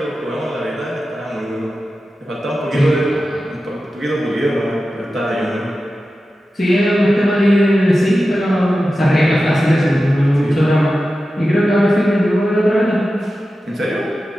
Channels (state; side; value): normal; both; correlation 0.93